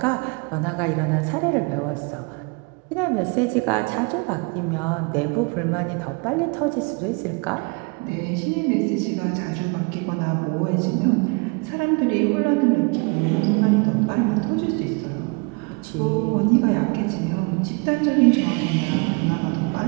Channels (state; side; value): quieter; left; 31.2 dB